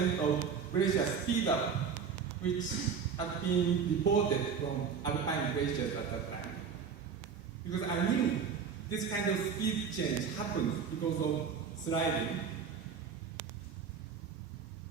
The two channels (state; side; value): quieter; left; 6.4 dB